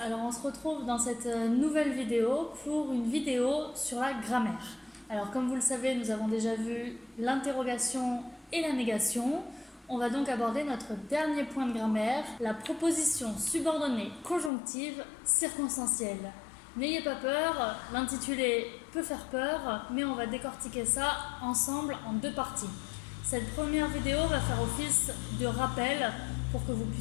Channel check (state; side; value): drops out; right; at 14.5 s